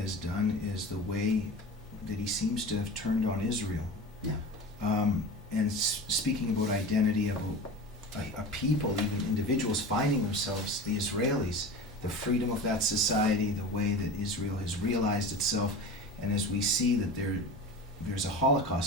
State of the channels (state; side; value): normal; both; correlation 0.32